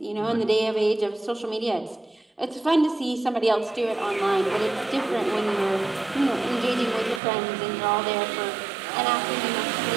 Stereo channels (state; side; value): drops out; left; at 7.2 s